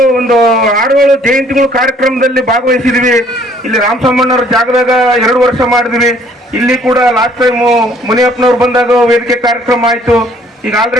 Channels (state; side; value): normal; both; correlation 0.60